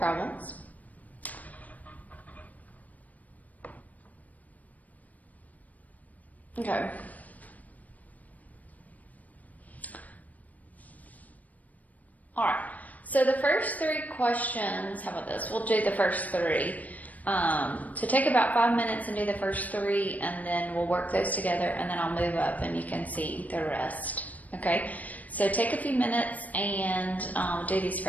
Okay. All right. So the first 3 questions, how about this? We'll do the first 3. So take about 5 minutes and do the first 3, and then we'll work those together, and then I'll move up and you can see the rest. Okay. So take a few minutes and do these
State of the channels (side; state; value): right; late; 0.074 ms